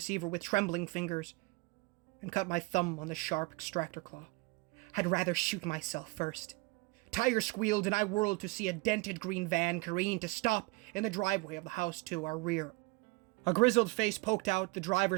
with trembling fingers and cut my thumb on the sharp extractor claw. I'd rather shoot myself first. Tires squealed and I whirled to see a dented green van careen to stop in the driveway of the house to our rear. A grizzled face poked out the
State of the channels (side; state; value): left; quieter; 25.2 dB